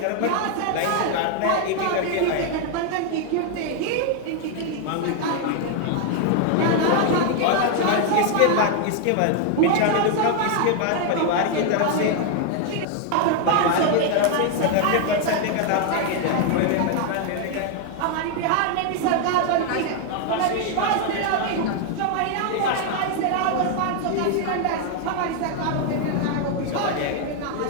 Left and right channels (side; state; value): both; different; correlation 0.00